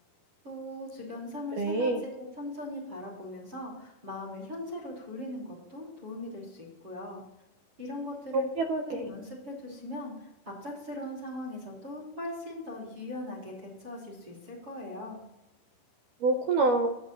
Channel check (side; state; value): left; late; 10 ms